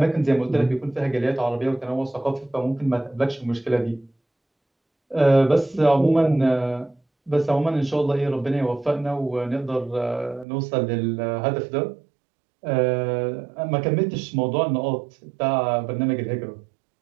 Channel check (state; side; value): drops out; left; at 10.5 s